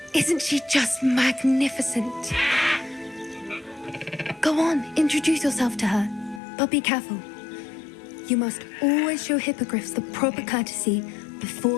Isn't she just magnificent? Go on, introduce yourself to her. But be careful. You must always show hippogriffs the proper courtesy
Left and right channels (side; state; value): right; drops out; at 6.4 s